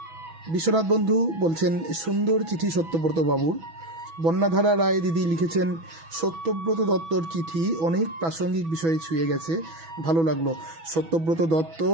বিশ্বনাথ বন্ধু বলছেন, সুন্দর চিঠি সত্যব্রত বাবুর। বন্যাধারা রায় দিদি লিখেছেন, সত্যব্রত দত্তর চিঠি অনেক প্রাসঙ্গিক বিষয়ে ছুঁয়ে গেছে, ভালো লাগলো। সত্যব্রত দত্ত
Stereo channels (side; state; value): left; late; 6.1 ms